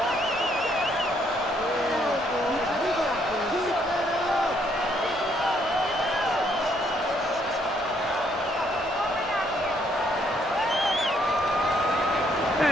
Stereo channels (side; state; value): both; normal; correlation 0.70